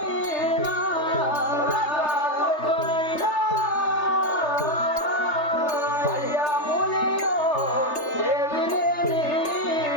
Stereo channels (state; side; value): late; right; 3.3 ms